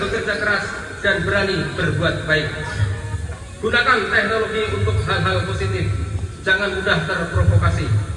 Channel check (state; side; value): identical; both; correlation 1.00